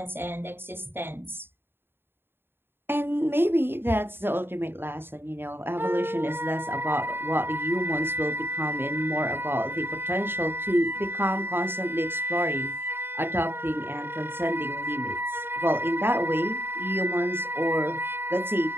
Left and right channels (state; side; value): late; left; 0.11 ms